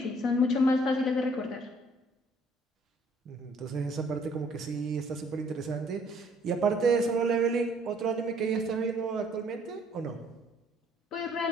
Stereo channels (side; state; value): both; normal; correlation 0.62